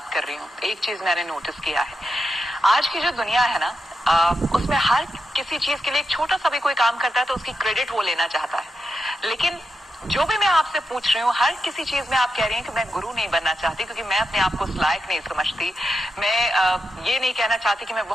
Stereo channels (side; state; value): both; normal; correlation 0.86